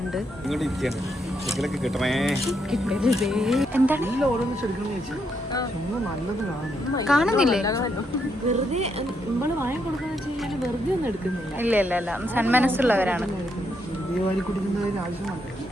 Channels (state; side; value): normal; both; correlation 0.78